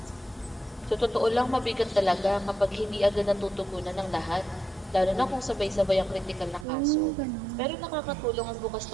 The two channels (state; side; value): drops out; left; at 6.7 s